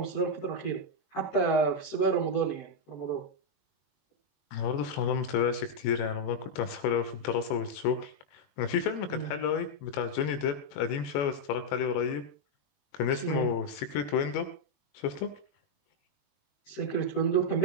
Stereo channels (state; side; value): late; right; 21 ms